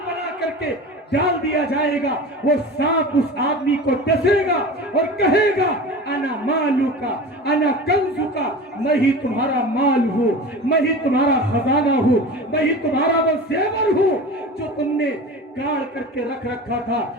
بنا کر کے ڈال دیا جائے گا۔ وہ سانپ اس آدمی کو ڈسے گا اور کہے گا، انا مالکا انا کنزکا، میں ہی تمہارا مال ہوں، میں ہی تمہارا خزانہ ہوں، میں ہی تمہارا وہ زیور ہوں جو تم نے گاڑ کر کے رکھ رکھا تھا،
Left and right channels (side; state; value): both; normal; correlation 0.33